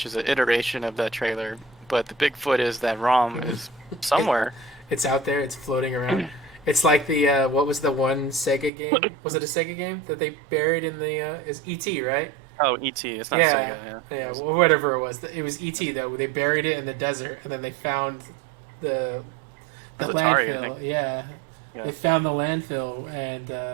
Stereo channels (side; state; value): left; drops out; at 8.7 s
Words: is an iteration of that trailer, but the Bigfoot is that ROM is somewhere. It's out there. It's floating around. It's like the what was the one Sega game? Was it a Sega game that they buried in the? Is E.T. right? Oh, E.T. It's not Sega. Yeah. Whatever it was. It was E.T. though. They buried it in the desert, and then they found the Atari, landfill. Yeah. They found the landfill